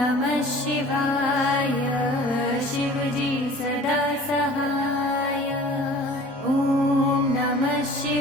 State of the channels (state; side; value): normal; both; correlation 0.46